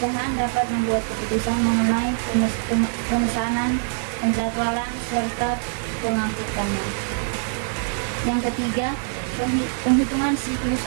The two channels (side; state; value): left; silent; 63 dB below the other